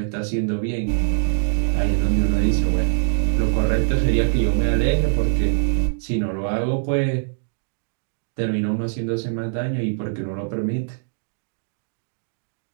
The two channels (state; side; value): silent; left; digital silence